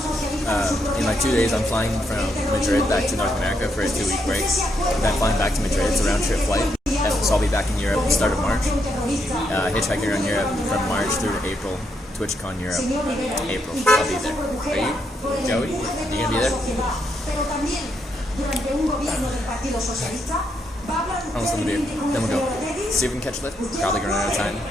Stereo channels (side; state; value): both; normal; correlation 0.79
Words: In like 2 days, I'm flying from Madrid back to North America for a 2-week break. Then flying back to Madrid. It's a round-trip flight. So I'll be back in Europe at the start of March. Hitchhiking around Europe from March through to April. TwitchCon Europe, April. I'll be there. Are you? Joey? Are you gonna be there? Almost done the beer. Then we'll go. See if we can catch a lift. Probably gonna run out of time.